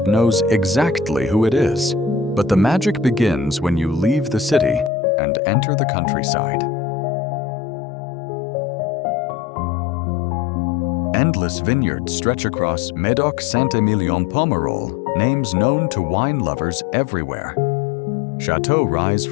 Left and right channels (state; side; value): drops out; right; at 4.9 s